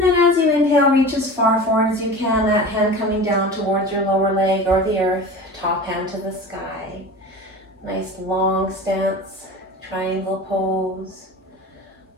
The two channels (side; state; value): both; normal; correlation 0.35